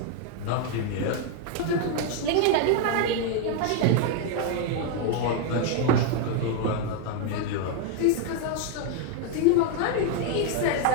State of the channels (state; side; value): different; both; correlation 0.01